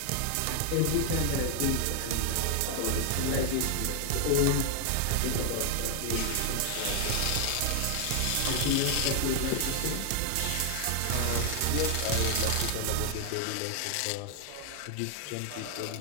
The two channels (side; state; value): both; different; correlation 0.00